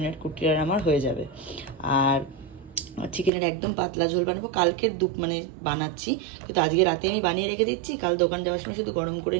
কুটির আর আমার হয়ে যাবে। আর চিকেনের একদম পাতলা ঝোল বানাবো, কালকে বানাচ্ছি, কিন্তু আজকে রাতে আমি বানিয়ে রেখে দিচ্ছি, কাল দোকান যাওয়ার সময় শুধু গরম করে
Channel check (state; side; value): drops out; left; at 3.3 s